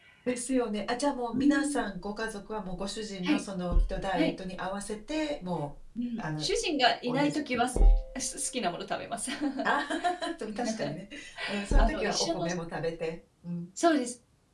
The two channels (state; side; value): identical; both; correlation 1.00